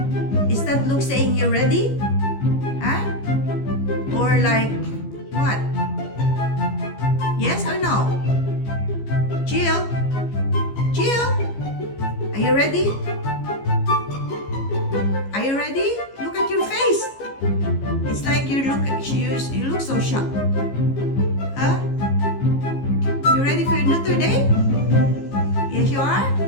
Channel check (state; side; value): late; right; 15 ms